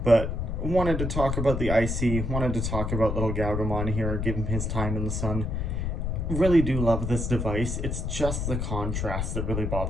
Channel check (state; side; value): noise; left; rumble, 2 dB below the sound